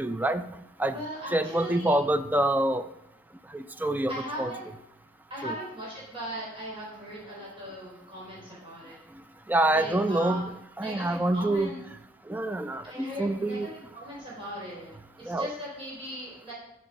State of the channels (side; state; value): both; normal; correlation 0.72